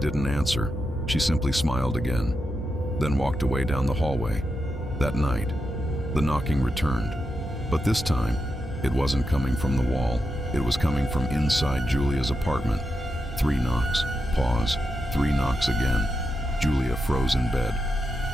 answer. She simply smiled again, then walked away down the hallway. That night, the knocking returned, but this time, it wasn't coming from the wall. It was coming from inside Julia's apartment. 3 knocks, pause, 3 knocks again. Julia froze in bed.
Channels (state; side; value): normal; both; correlation 0.87